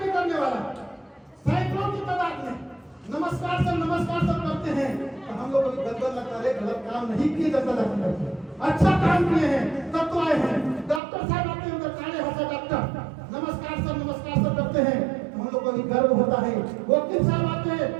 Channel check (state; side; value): drops out; left; at 11.0 s